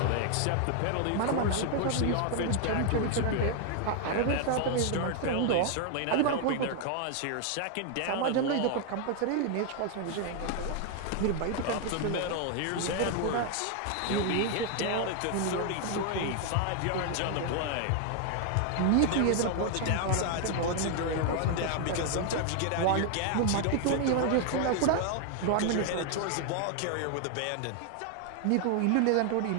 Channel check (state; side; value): different; both; correlation 0.00